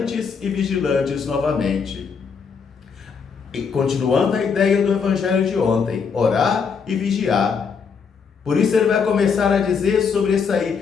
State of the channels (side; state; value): right; quieter; 6.0 dB